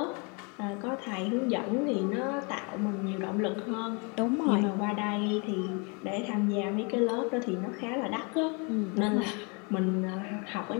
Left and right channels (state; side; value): quieter; right; 32.9 dB